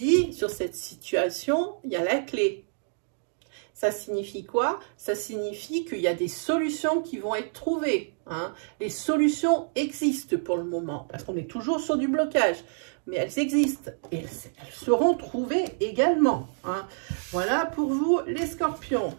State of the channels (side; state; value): left; silent; digital silence